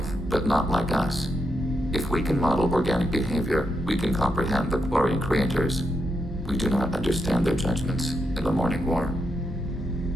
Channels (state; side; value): normal; both; correlation 0.83